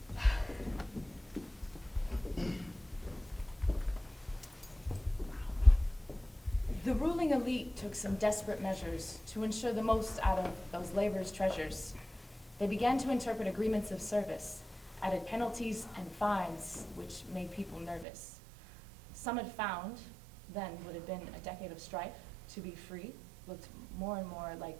The ruling elite took some desperate measures to ensure the most out of those labor's treasures. They began to interpret agreements of service, added penalties and fines, which made people nervous. Some had found, then would have been a decade of strife, to be free looked more and more like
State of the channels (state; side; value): drops out; left; at 18.1 s